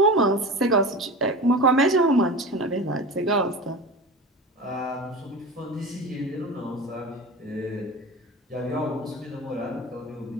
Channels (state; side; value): normal; both; correlation 0.31